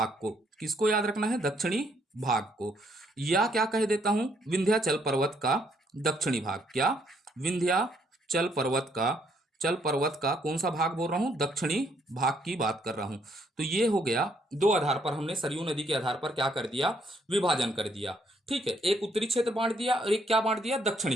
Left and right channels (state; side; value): normal; both; correlation 0.70